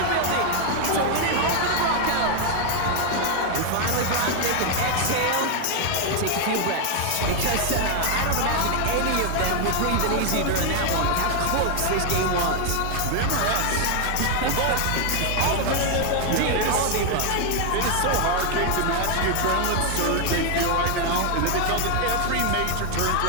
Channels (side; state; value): both; different; correlation 0.00